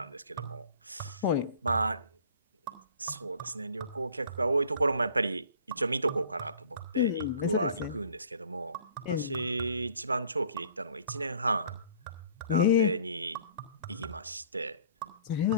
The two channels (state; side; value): inverted; both; correlation -0.52